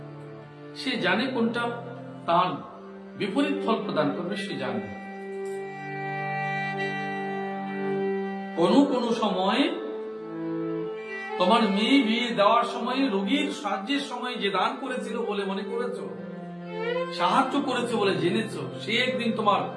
সে জানে কোনটা তার বিপরীত ফল প্রদান করবে, সে জানে। কোন সময় তোমার মেয়ে বিয়ে দেওয়ার সময়, রোগীর সাহায্যের সময় যে দান করেছিল বলে মনে করেছ, সাহায্য করেছে বলে জেনেছ, সে একদিন তোমার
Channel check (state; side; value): identical; both; correlation 1.00